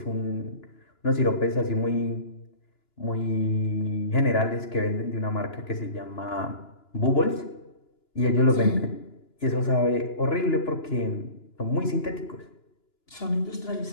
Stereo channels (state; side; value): late; right; 2.9 ms